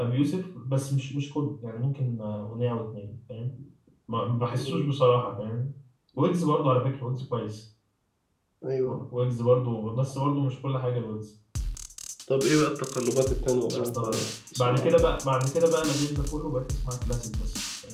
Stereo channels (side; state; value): both; identical; correlation 1.00